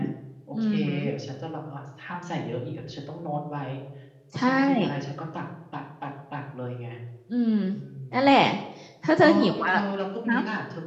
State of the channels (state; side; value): identical; both; correlation 1.00